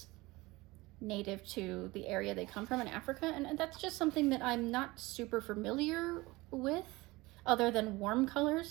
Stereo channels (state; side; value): quieter; left; 21.5 dB